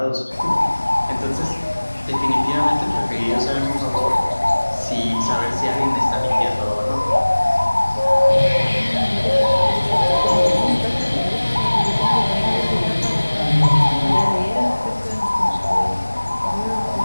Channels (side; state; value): both; inverted; correlation -1.00